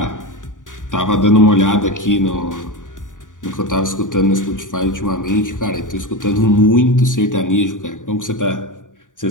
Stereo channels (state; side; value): late; right; 0.88 ms